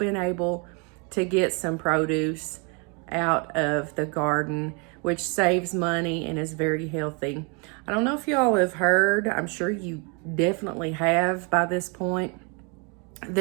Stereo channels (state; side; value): quieter; left; 33.8 dB